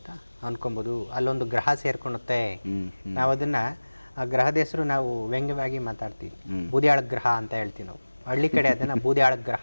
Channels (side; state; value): both; inverted; correlation -1.00